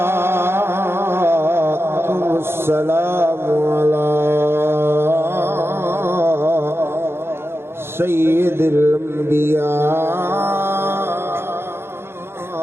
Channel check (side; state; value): left; late; 0.12 ms